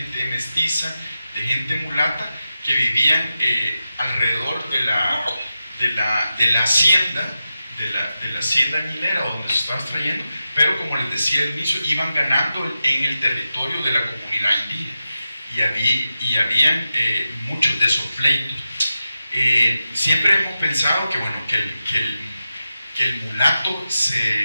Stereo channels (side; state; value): both; inverted; correlation -0.91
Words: mestiza, de gente mulata, que vivían alrededor de la hacienda, de la hacienda añilera donde se estaba extrayendo, pero como les decía al inicio, iban ganando en el territorio de la comunidad indígena y habían muchos de esos pleitos. Siempre hemos pensado que, bueno, que el mulato